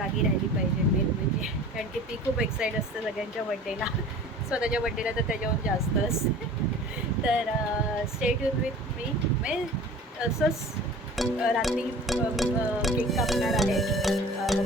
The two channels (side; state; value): both; normal; correlation 0.43